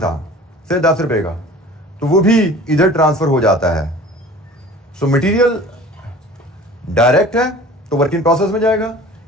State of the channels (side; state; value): both; normal; correlation 0.44